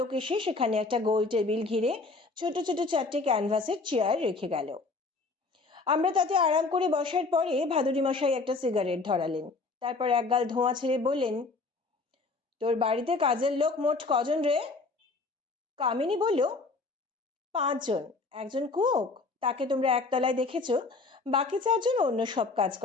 এসে সেখানে একটা গোল টেবিল ঘিরে ছোট ছোট 4টে ক্যানভাসের চেয়ার রেখে গেল। আমরা তাতে আরাম করে বসার পরে ভাদুরী মশাই একটা সিগারেট ধরালেন, তারপর একগাল ধোঁয়া ছেড়ে বললেন, তোর বাড়িতে কাজের লোক মোট কজন রে? কামিনী বলল, 5 জন। একজন কুক, তাকে তোমরা একতলায় দেখেছো, বাকি 4 জন অন্য সব কাজ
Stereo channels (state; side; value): quieter; right; 3.8 dB